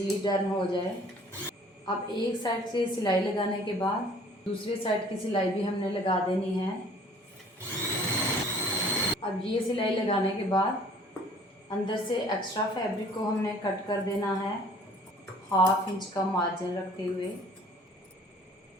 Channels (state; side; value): normal; both; correlation 0.53